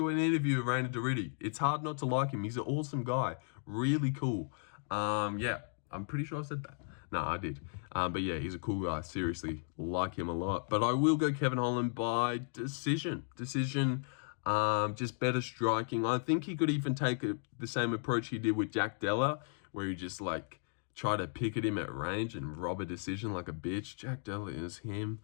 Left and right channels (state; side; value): silent; right; 54 dB below the other